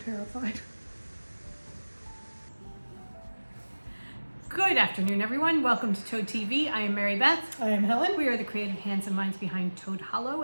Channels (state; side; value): inverted; both; correlation -1.00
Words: Good afternoon, everyone. Welcome to Toad TV. I am Mary Beth. I am Helen. We are the creative hands and minds behind Toad Hollow,